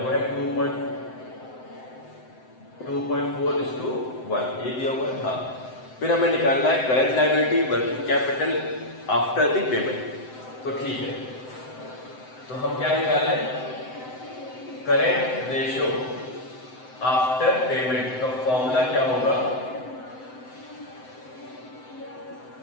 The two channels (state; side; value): late; right; 7.8 ms